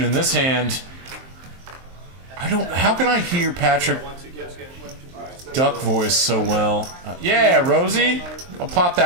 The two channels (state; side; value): late; left; 23 ms